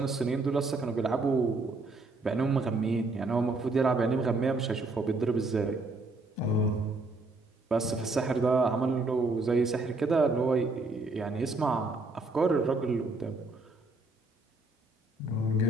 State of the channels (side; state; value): left; quieter; 3.1 dB